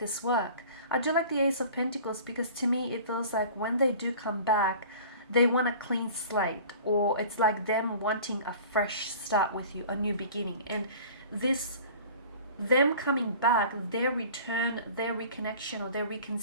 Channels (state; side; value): inverted; both; correlation -0.44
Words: work. I do like the Ace of Pentacles because to me it feels like when they do come back, they want a clean slate, or it's like them wanting a fresh start with you, a new beginning. And them coming back, their return, their reconnection, or their